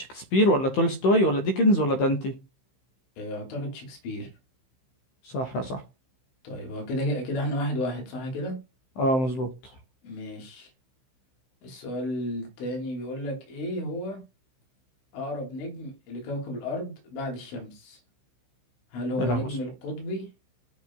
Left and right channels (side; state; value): right; late; 15 ms